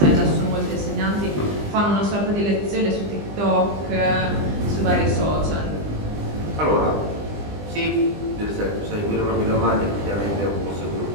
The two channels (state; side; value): late; left; 20 ms